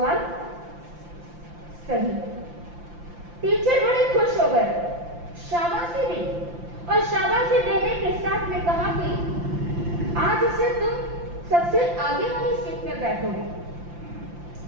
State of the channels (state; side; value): late; left; 5.8 ms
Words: सही। टीचर बड़े खुश हो गए, शाबाशी दी और शाबाशी देने के साथ में कहा कि आज से तुम सबसे आगे वाली सीट में बैठोगे।